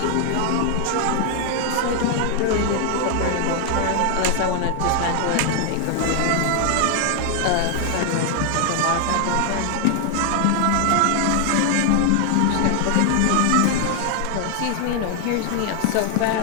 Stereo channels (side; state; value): both; different; correlation 0.00